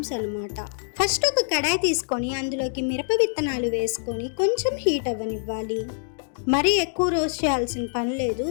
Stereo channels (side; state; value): right; silent; digital silence